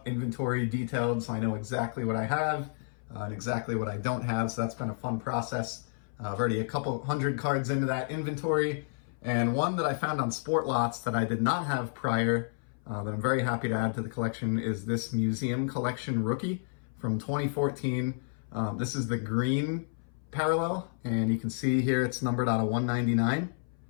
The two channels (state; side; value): silent; right; 57 dB below the other